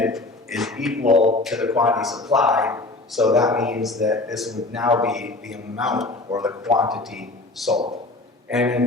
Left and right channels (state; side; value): quieter; right; 3.0 dB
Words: is equal to the quantity supplied, so that means that this would now be the amount or the quantity sold. And